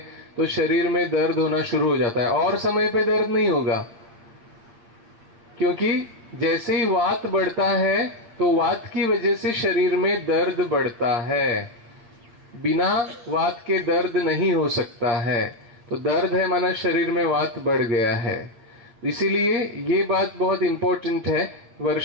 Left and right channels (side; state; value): left; late; 8.7 ms